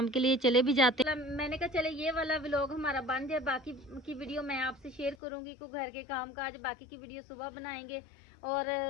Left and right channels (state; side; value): drops out; right; at 5.2 s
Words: के लिए चले भी जाते हैं। मैंने कहा चले ये वाला व्लॉग हमारा बन जाए, बाकी की वीडियो मैं आपसे शेयर करूंगी। को घर के काम काज बाकी की वीडियो सुबह बनाएंगे और